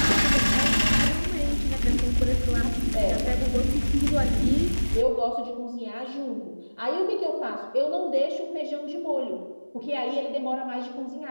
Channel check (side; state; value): both; inverted; correlation -1.00